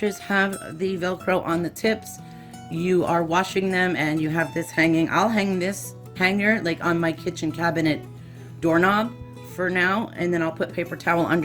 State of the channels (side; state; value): both; identical; correlation 1.00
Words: have the Velcro on the tips, you are washing them and you have this hanging. I'll hang this hanger like on my kitchen cabinet doorknob for now, and then I'll put paper towel